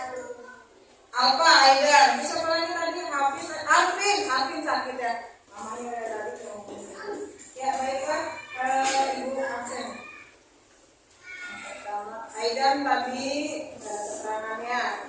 Alfa, Aidan. Bisa lagi tadi Hafiz. Alvin sakit ya. Mamanya tadi ngomong. Ya baiklah, Ibu absen. Aidan tadi keterangannya.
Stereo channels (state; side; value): identical; both; correlation 1.00